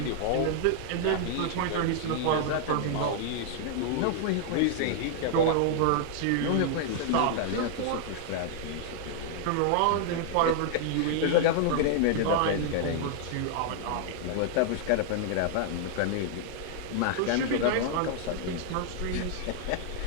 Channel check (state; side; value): different; both; correlation -0.01